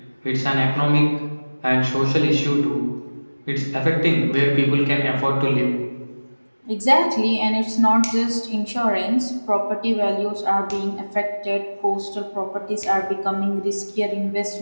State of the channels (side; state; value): both; inverted; correlation -1.00